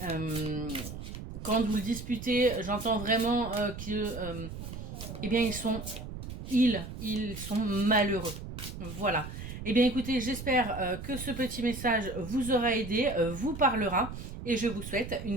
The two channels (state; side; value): noise; right; rumble, 9 dB below the sound